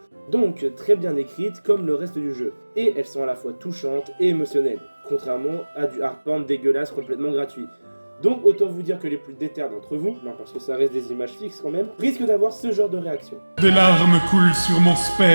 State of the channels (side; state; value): both; inverted; correlation -1.00